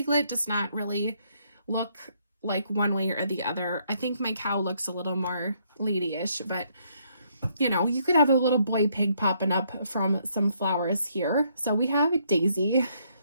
does not really look like one way or the other. I think my cow looks a little more ladyish, but you know, you could have a little boy pig popping up from some flowers here. So we have Daisy.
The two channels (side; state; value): both; inverted; correlation -0.71